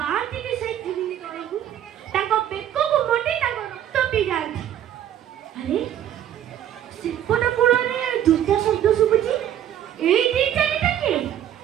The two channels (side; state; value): left; quieter; 10.9 dB